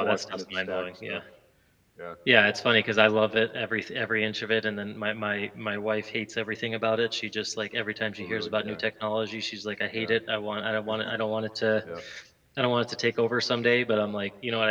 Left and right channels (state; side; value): identical; both; correlation 1.00